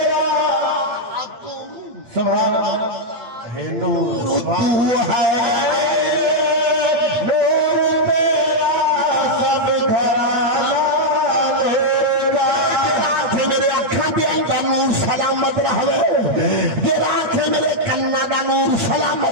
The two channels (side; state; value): left; late; 8.4 ms